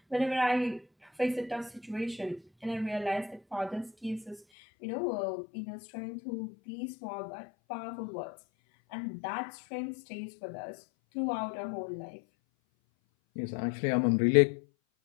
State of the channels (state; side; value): drops out; right; at 4.4 s